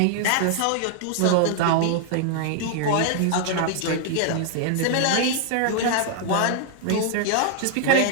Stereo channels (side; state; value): both; different; correlation 0.00